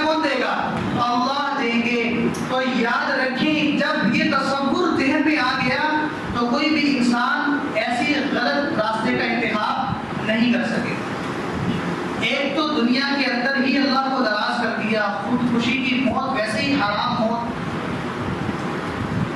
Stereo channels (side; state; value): both; identical; correlation 1.00